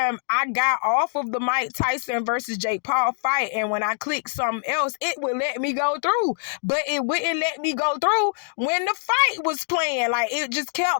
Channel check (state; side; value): silent; right; digital silence